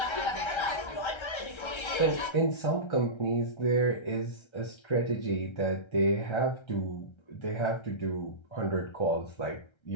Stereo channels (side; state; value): right; late; 1.3 ms